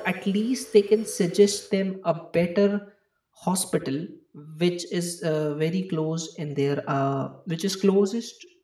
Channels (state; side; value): identical; both; correlation 1.00